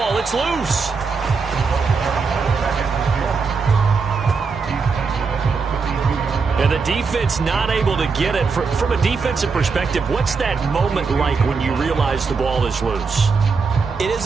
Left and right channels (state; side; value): quieter; left; 4.9 dB